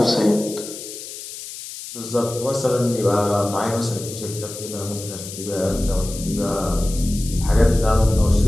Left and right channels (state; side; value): noise; left; hiss, 11 dB below the sound